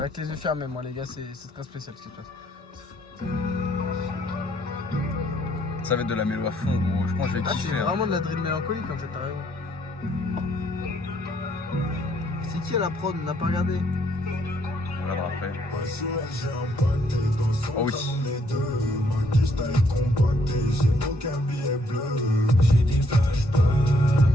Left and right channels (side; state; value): both; normal; correlation 0.68